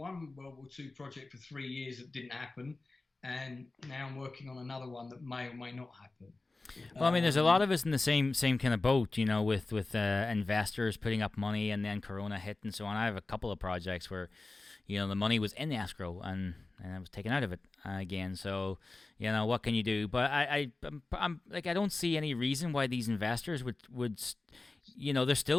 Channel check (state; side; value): quieter; right; 3.3 dB